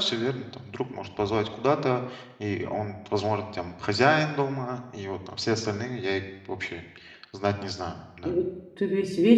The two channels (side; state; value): both; identical; correlation 1.00